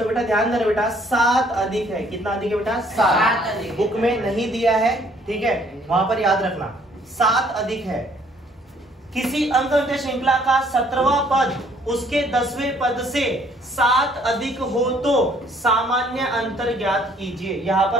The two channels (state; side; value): normal; both; correlation 0.62